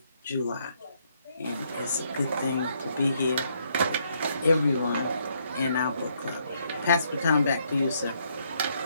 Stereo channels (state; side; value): inverted; both; correlation -0.72